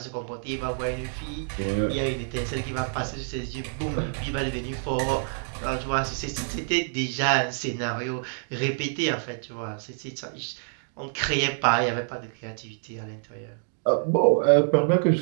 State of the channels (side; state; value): left; silent; digital silence